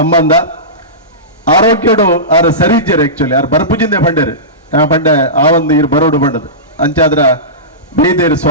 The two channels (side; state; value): both; normal; correlation -0.20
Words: ಆರೋಗ್ಯಡು ಆರು ಸರಿ ಇಜ್ಜರು ಆಕ್ಚುಲಿ ಆರು ಬರ್ಪುಜಿಂದೆ ಪಂಡರು ಪಂಡೆ ಆ ಒಂದು ಇರು ಬರೋಡು ಬಂಡದು ಅಂಚಾದ್ರ ಬೇದೇರು